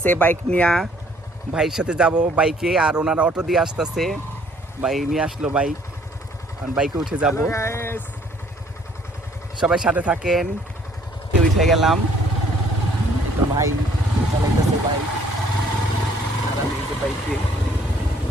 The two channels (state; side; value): normal; both; correlation 0.61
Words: বাইক নিয়ে ভাইয়ের সাথে যাব বাইকে, আর ওনারা অটো দিয়ে আসতেছে। ভাই নিয়ে আসলো বাইক, বাইকে উঠে যাব। সবাই সাথে থাকেন। উঠে গেলাম, তো ভাই চালাইতেছে বাইক, আর আমি এই যে বাইকে।